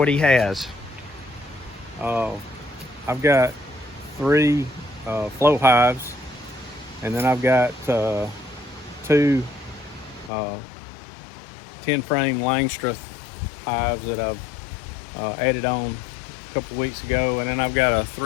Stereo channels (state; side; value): drops out; right; at 10.3 s